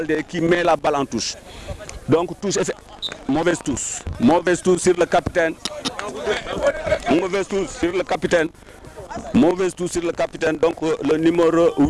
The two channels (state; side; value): identical; both; correlation 1.00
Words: qui met la balle en touche. Donc touche mauvaise touche sur le capitaine. Donc le numéro